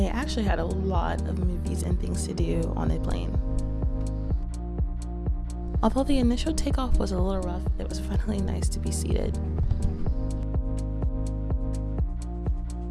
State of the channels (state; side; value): identical; both; correlation 1.00